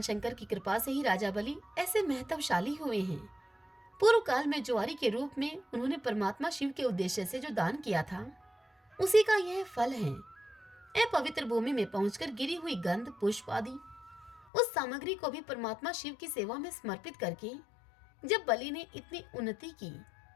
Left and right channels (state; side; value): drops out; right; at 14.5 s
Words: शंकर की कृपा से ही राजा बलि ऐसे महत्वशाली हुए हैं। पूर्व काल में ज्वारी के रूप में उन्होंने परमात्मा शिव के उद्देश्य से जो दान किया था, उसी का यह फल है। अपवित्र भूमि में पहुंचकर गिरी हुई गंध, पुष्प आदि उस सामग्री को भी परमात्मा शिव की सेवा में समर्पित करके जब बलि ने इतनी उन्नति की,